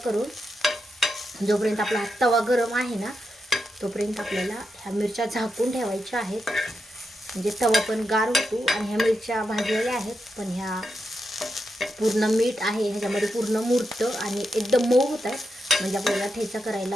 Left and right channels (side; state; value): both; normal; correlation 0.86